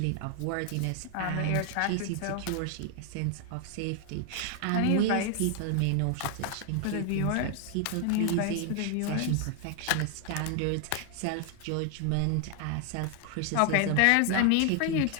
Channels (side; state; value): both; different; correlation 0.00